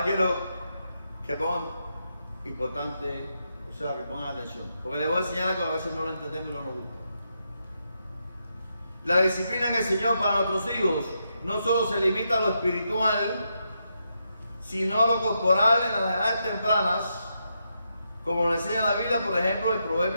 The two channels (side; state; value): both; inverted; correlation -0.83